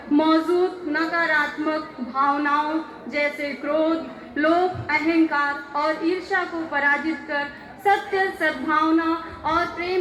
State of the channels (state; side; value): identical; both; correlation 1.00